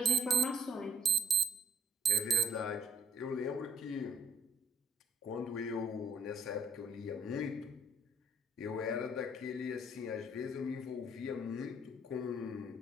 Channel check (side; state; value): both; normal; correlation 0.61